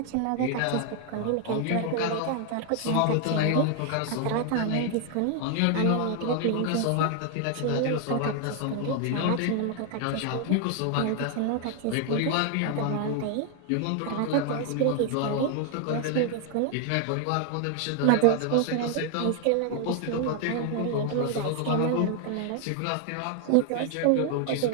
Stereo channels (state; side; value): different; both; correlation 0.00